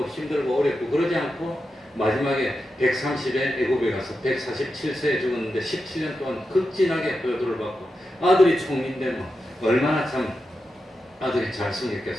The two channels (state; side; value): normal; both; correlation 0.89